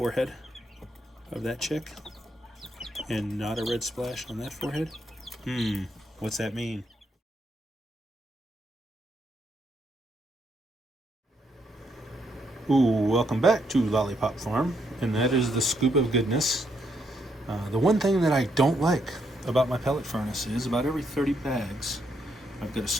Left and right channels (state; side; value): normal; both; correlation 0.76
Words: of that chick. And not a red splash on that forehead. What's that mean? Ooh, welcome back to Lollipop Farm, and that is the scoop of goodness. The one thing that I don't like about my pellet furnace is about every 30 bags, I've got to